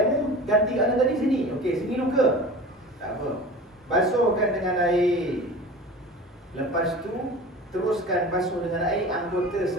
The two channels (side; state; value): both; normal; correlation 0.37